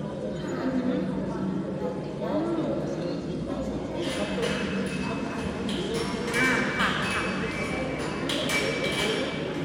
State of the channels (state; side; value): identical; both; correlation 1.00